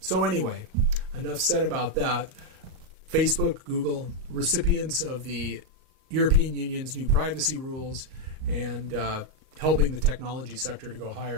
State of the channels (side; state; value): left; late; 38 ms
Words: anyway, enough said about that. Facebook, Google, recipients of the European Union's new privacy rules, and helping the technology sector to go